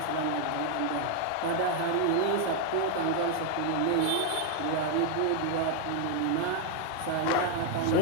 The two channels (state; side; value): different; both; correlation 0.01